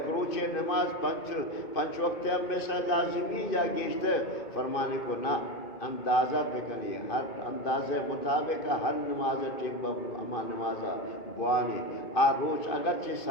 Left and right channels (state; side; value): late; right; 2.5 ms